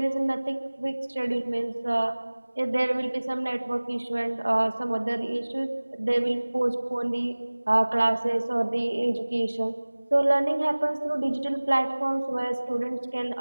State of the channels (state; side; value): inverted; both; correlation -1.00